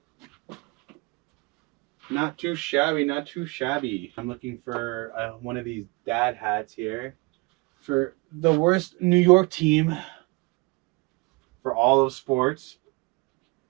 Not too shabby, not too shabby. I'm looking for one of these dad hats here for the worst New York team for all of sports.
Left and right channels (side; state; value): left; quieter; 26.3 dB